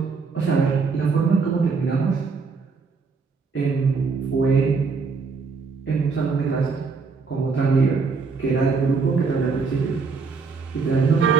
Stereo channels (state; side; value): quieter; left; 4.8 dB